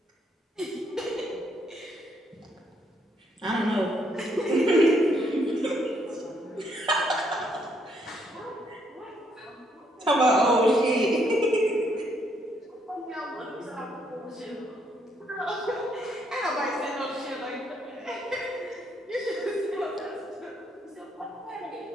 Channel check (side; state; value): both; normal; correlation 0.72